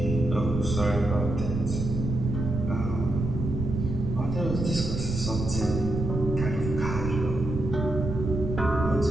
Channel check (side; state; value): right; noise; rumble, 4 dB below the sound